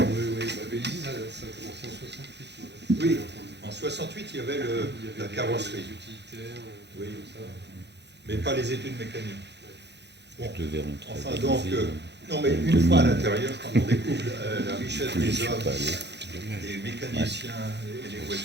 Bah, Vélizy, ça a commencé en 68. Oui, en 68, il y avait la carrosserie. Les utilitaires, oui, tout ça. Mais pas les études mécaniques. Bon, Je devais rentrer enfin, à donc, Vélizy, non, mais une fois à l'intérieur, quand on découvre la richesse des hommes, des mécaniciens, et les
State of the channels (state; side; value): late; left; 0.50 ms